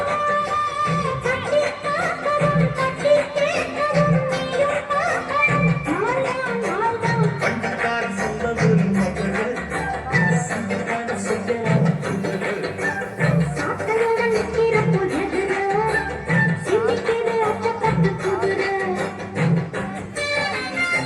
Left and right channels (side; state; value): both; identical; correlation 1.00